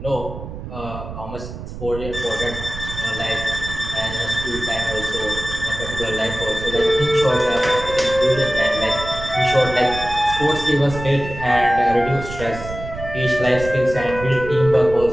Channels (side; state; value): right; noise; rumble, 10 dB below the sound